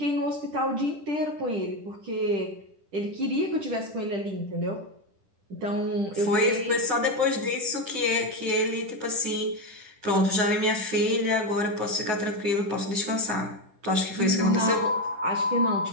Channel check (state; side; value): late; left; 10 ms